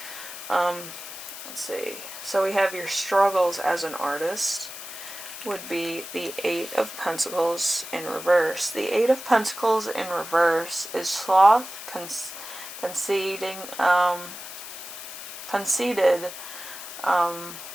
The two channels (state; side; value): noise; left; hiss, 11 dB below the sound